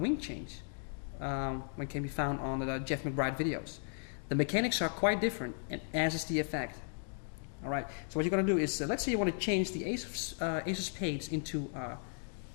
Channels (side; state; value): right; silent; 54 dB below the other